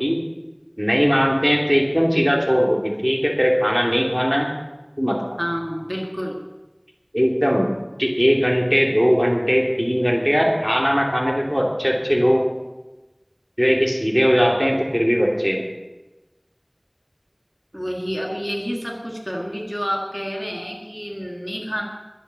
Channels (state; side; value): identical; both; correlation 1.00